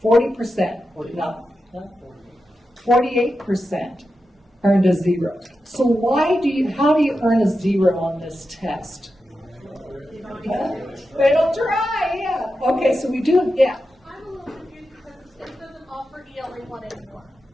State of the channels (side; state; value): both; normal; correlation 0.90